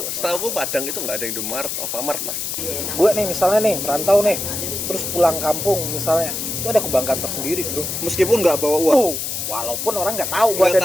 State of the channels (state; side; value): noise; left; hiss, 3 dB below the sound